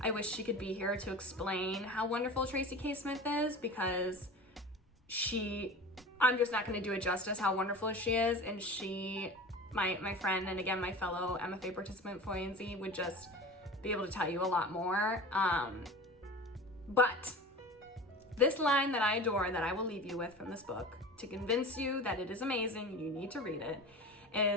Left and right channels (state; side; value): normal; both; correlation 0.35